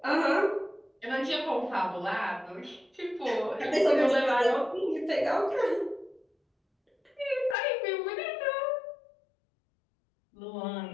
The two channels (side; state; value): right; drops out; at 7.6 s